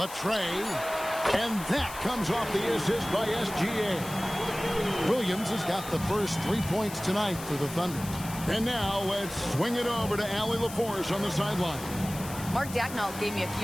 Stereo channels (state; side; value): noise; left; hiss, 13 dB below the sound